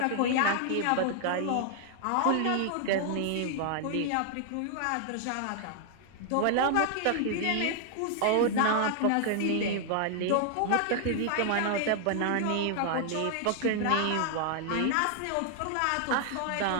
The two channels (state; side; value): different; both; correlation 0.00